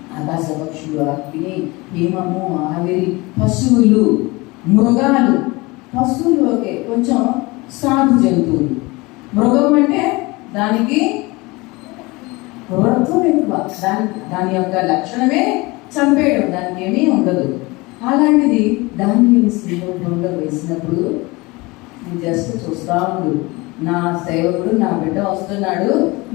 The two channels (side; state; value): right; quieter; 23.6 dB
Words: ఆకాశ పక్షులు, అగ్ని, హిమము, ఆవిరి, పశువులు, మృగాలు. పశువులు ఓకే, కొంచెం సాధు జంతువులు. మృగం అంటే దానికి క్రూరత్వం ఎక్కువ, దాని యొక్క లక్షణమే చంపేయడం, దానికి ఏమీ ఉండదు. అలాంటిది దాన్ని సింహంలో వేసినప్పుడు జస్ట్ చూస్తూ ఉండు, నా సేవకుడు నా బిడ్డ వస్తున్నాడు,